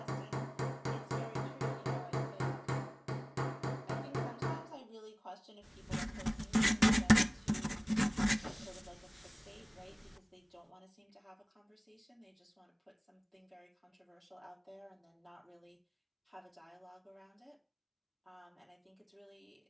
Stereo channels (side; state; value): both; identical; correlation 1.00